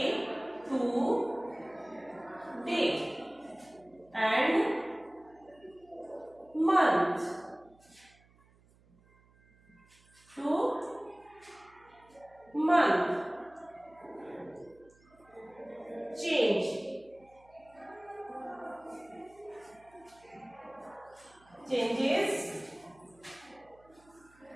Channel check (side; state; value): right; noise; hum, 29 dB below the sound